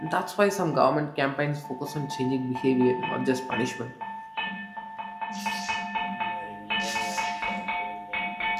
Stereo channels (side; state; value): both; identical; correlation 1.00